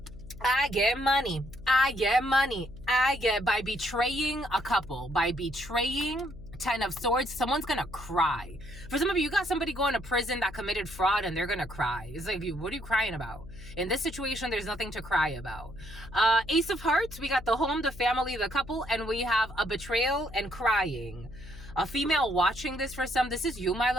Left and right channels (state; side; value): noise; left; hum, 16 dB below the sound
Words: I get money. I get money. I get, by betraying a couple, by betraying 10 of Swords, someone's gonna cry. For some of you got somebody going to prison that committed fraud and they're gonna cry. It's like, what are you crying about? In this situation, there's nothing to cry about. Ace of Hearts, we got the home, the family, the couple, and we have a betrayal and crying. A female watching this for some. This is you, my